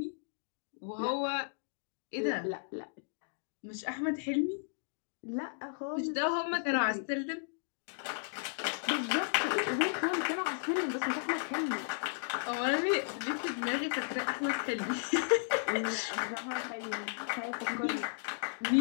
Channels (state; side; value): silent; right; digital silence